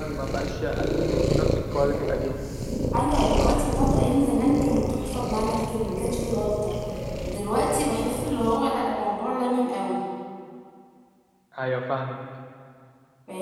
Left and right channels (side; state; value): both; identical; correlation 1.00